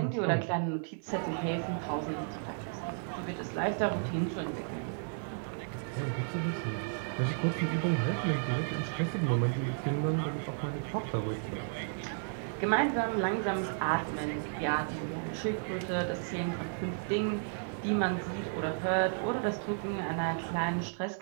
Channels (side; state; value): left; silent; 56 dB below the other